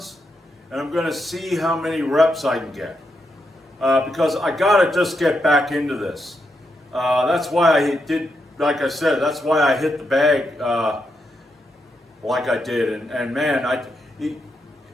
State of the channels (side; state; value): both; normal; correlation 0.82